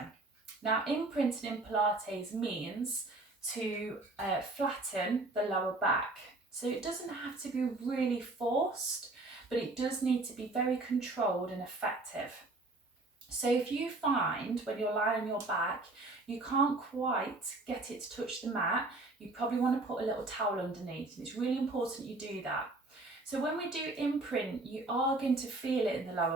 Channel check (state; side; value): quieter; left; 3.1 dB